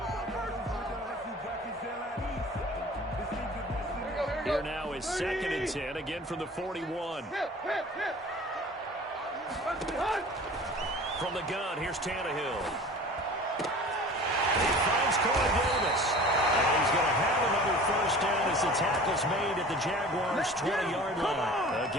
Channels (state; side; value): normal; both; correlation 0.42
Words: Here now is 2nd and 10, again from the 41. From the gun, here's Tannehill. He finds Corey Davis. And he's going to have another 1st down as the tackle's made at the Jaguars' 20-yard line. A